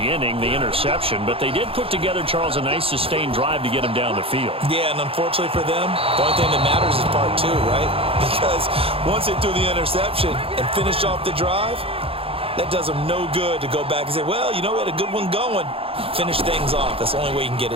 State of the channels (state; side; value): late; left; 0.27 ms